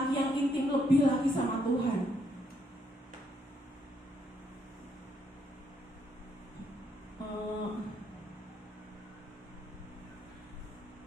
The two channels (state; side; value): normal; both; correlation 0.74